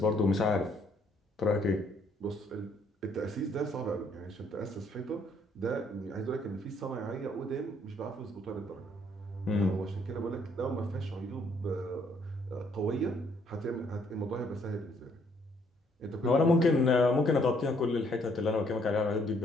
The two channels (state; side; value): normal; both; correlation 0.67